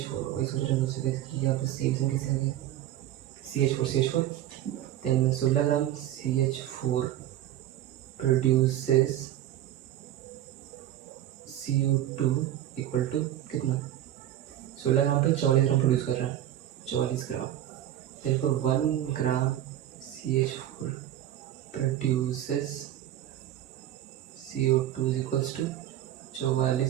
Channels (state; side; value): quieter; left; 12.6 dB